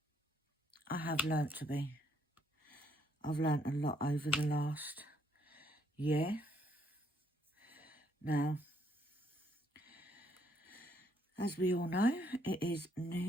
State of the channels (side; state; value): both; normal; correlation 0.70